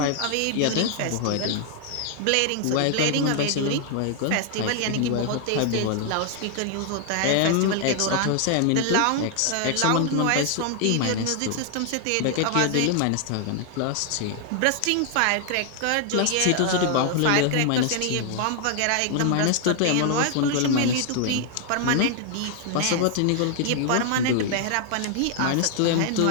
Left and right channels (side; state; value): both; different; correlation 0.00